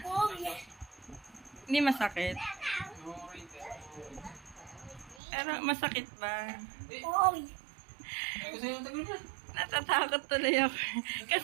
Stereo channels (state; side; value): drops out; left; at 5.2 s